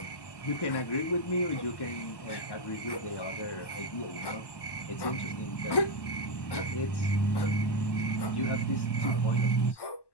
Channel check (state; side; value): late; right; 1.1 ms